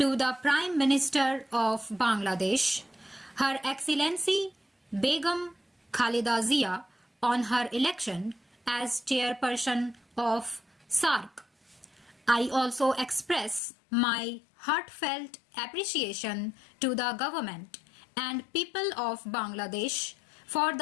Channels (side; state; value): right; drops out; at 13.6 s